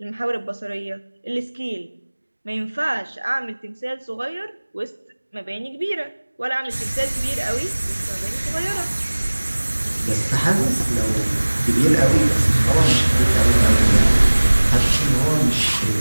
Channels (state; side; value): inverted; both; correlation -1.00